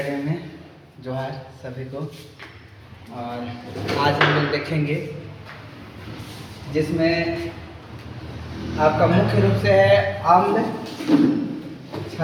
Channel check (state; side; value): identical; both; correlation 1.00